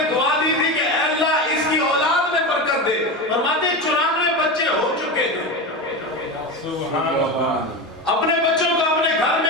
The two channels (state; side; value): normal; both; correlation 0.21